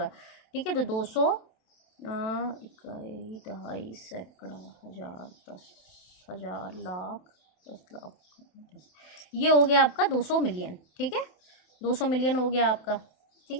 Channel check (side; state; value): right; late; 27 ms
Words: ठीक है, तो 200 इकाई, दहाई, सैकड़ा, हजार, 10,000, लाख, 10 लाख, ये हो गया आपका 200 मिलियन। ठीक है, 200 मिलियन हो गया आपका। ठीक